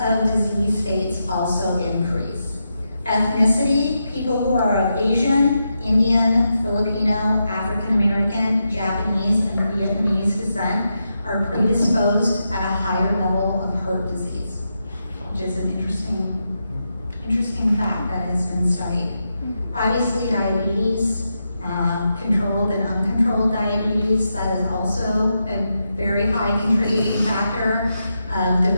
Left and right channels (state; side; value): inverted; both; correlation -0.86